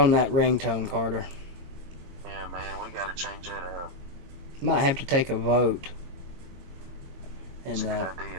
that ringtone, Carter. Yeah, man, we gotta change that up. Might have to take a vote in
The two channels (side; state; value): left; late; 22 ms